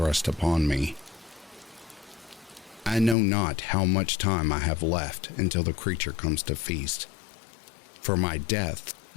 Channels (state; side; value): drops out; right; at 3.2 s